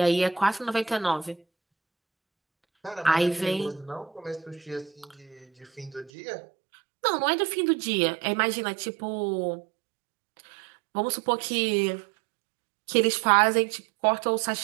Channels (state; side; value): drops out; left; at 6.1 s